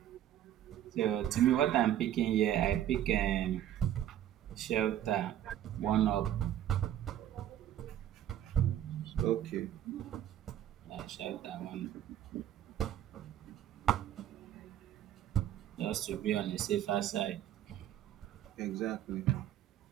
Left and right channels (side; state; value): left; quieter; 11.5 dB